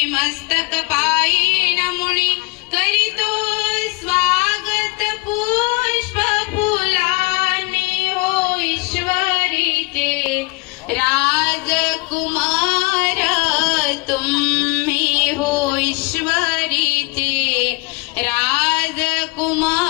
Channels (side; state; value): right; quieter; 26.0 dB